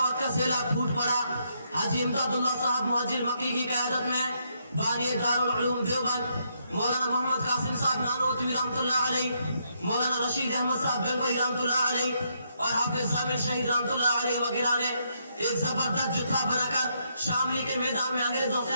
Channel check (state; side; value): inverted; both; correlation -0.76